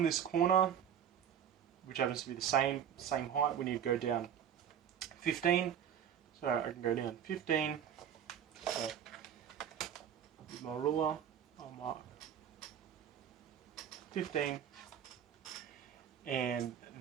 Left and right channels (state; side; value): quieter; left; 9.0 dB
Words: this corner, which happens to be the same height, we need to go down 15. So I can go down 15. So with my ruler, I'll mark 15, and